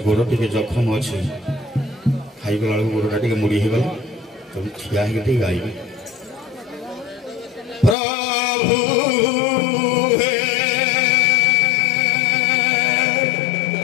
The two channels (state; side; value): drops out; right; at 8.0 s